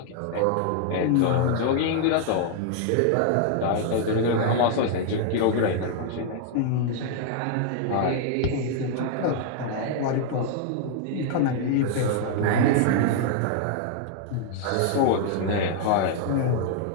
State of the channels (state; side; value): different; both; correlation 0.00